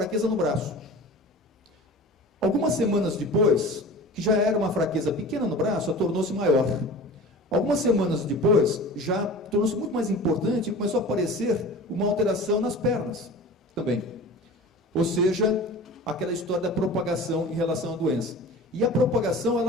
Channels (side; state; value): both; normal; correlation 0.38